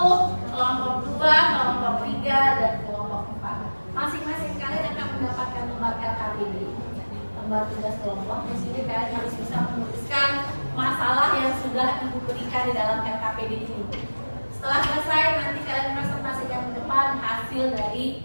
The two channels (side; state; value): both; inverted; correlation -1.00